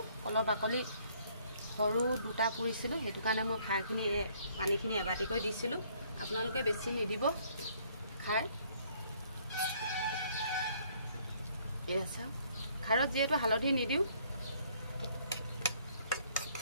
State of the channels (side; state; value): both; inverted; correlation -0.64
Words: কলৰ বাকলি সৰু দুটা পুৰিছিলোঁ, সেইটো কাৰণে মই খাৰখিনি পানীখিনি এবাটিকৈ দিছিলোঁ। আপোনালোকে বেছি নিদিব খাৰ। এয়া চাওক, খাৰত যিহেতু হালধি নিদিওঁ,